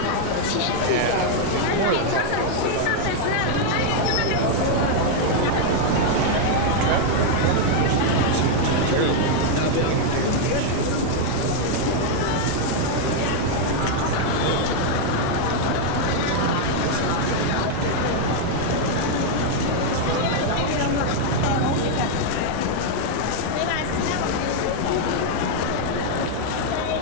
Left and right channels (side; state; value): both; different; correlation 0.00